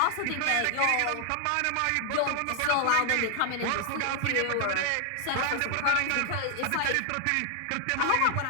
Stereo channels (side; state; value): both; different; correlation 0.00